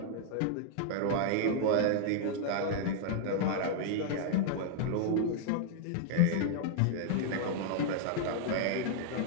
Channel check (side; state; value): both; different; correlation -0.01